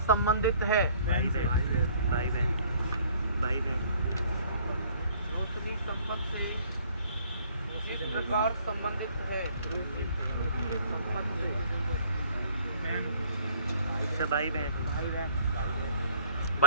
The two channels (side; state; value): both; inverted; correlation -0.55